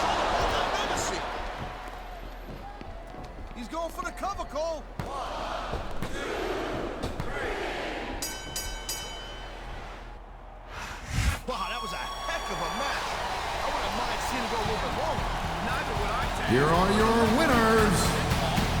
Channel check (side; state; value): both; identical; correlation 1.00